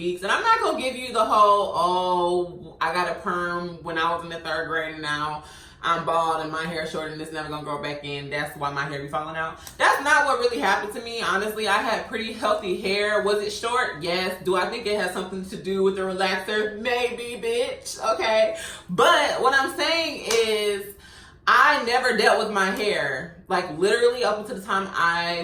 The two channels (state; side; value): identical; both; correlation 1.00